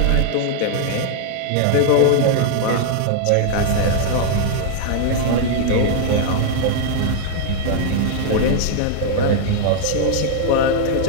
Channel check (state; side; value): different; both; correlation -0.01